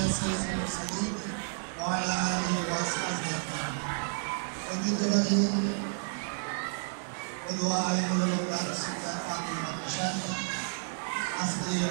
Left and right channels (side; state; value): left; silent; digital silence